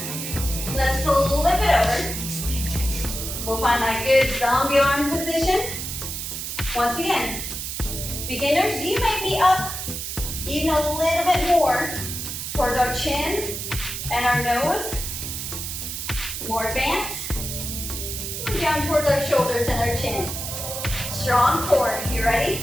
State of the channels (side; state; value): right; noise; hiss, 5 dB below the sound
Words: Let's flip it over. We'll find that good zombie arm position. Once again, beginners, you may be up even a little bit more towards our chin and our nose. More advanced, move down towards our shoulders and our chin. Strong core. You ready?